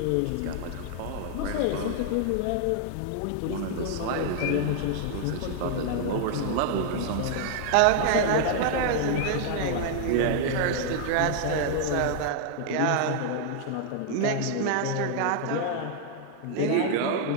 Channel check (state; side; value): different; both; correlation 0.00